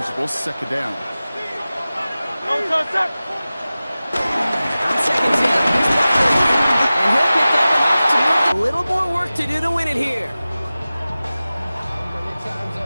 second down. On second down, here's Barkley. And he'll pick up enough to move. A little more work to do to win it here.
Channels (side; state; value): both; inverted; correlation -0.96